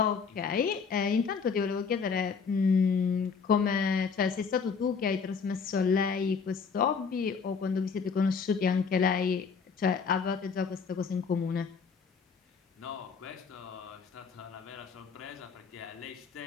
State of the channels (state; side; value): quieter; right; 5.7 dB